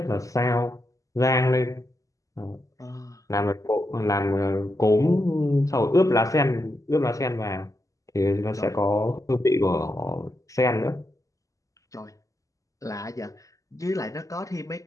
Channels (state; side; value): late; right; 0.16 ms